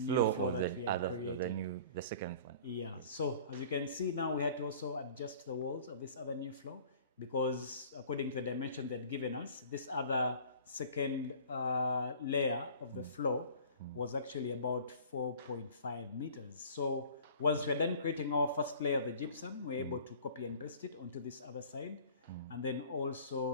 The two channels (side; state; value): both; inverted; correlation -0.47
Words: floor that we had created. The second one. Yeah, so as you can see now, we had to also adjust the walls of this other new floor because according to the dimension they'd given us, this other second layer of the floor was actually about 4.5 meters. So once we're done creating our first layer of the gypsum, we're able to copy and paste it onto this other side. And then